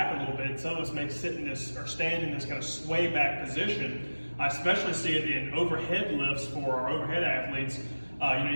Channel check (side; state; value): both; inverted; correlation -1.00